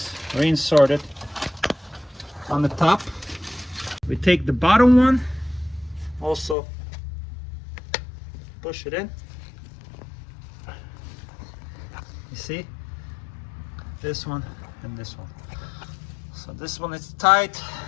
reinserted on the top. We take the bottom one, also push it in. You see? This one and this one. So this one is tight,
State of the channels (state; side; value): drops out; right; at 6.6 s